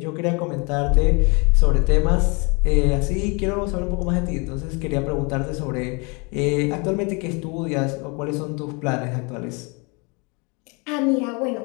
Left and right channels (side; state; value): right; quieter; 30.1 dB